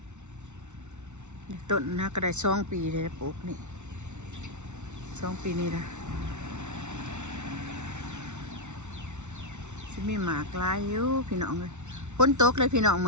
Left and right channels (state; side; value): late; left; 0.83 ms